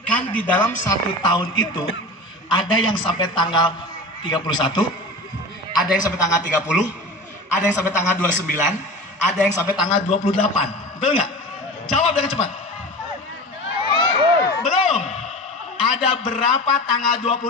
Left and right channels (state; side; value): normal; both; correlation 0.33